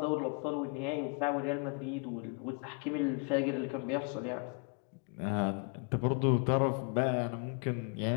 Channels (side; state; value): right; quieter; 36.1 dB